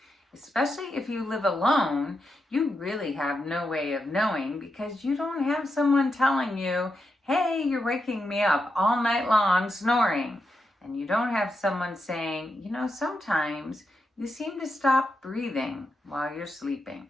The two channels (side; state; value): both; normal; correlation 0.86